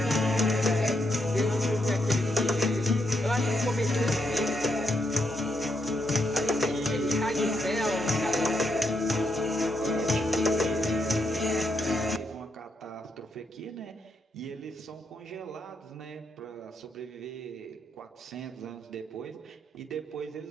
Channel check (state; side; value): normal; both; correlation 0.80